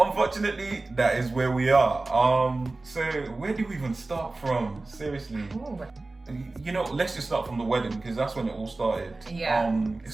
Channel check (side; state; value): left; quieter; 3.2 dB